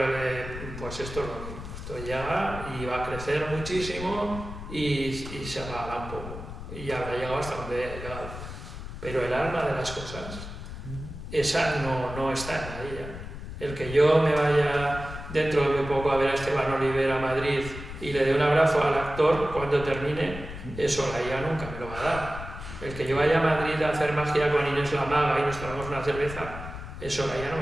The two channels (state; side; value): noise; left; rumble, 10 dB below the sound